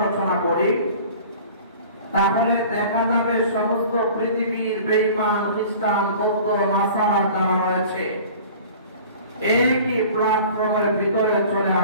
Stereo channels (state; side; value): inverted; both; correlation -0.44